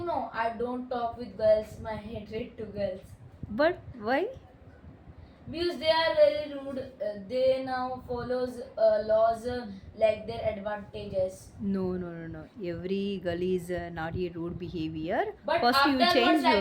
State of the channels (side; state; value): both; identical; correlation 1.00